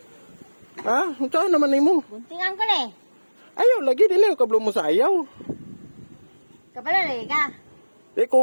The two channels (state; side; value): inverted; both; correlation -1.00